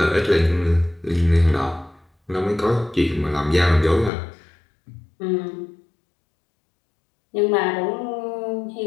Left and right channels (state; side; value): drops out; right; at 4.1 s